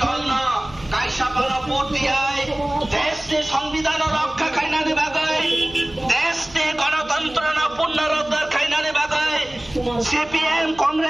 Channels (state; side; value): noise; right; hum, 21 dB below the sound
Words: Golno, Kaishapana Putia, Teste, Songvidano, Kainani Bagay, Teste, Gonatantrana, Punara, Kainani Bagay, CPM,